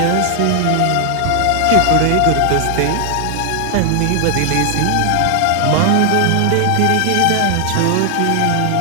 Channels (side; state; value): both; different; correlation 0.00